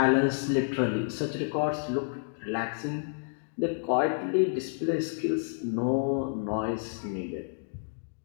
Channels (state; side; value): silent; right; digital silence